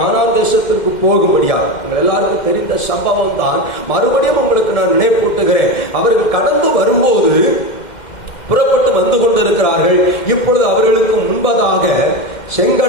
தேசத்திற்கு போகும்படியாக. எல்லாருக்கும் தெரிந்த சம்பவம் தான். மறுபடியும் உங்களுக்கு நான் நினைப்பூட்டுகிறேன். அவர்கள் கடந்து வரும்போது புறப்பட்டு வந்து கொண்டிருக்கிறார்கள். இப்பொழுது அவர்களுக்கு முன்பதாக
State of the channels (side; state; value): right; late; 2.1 ms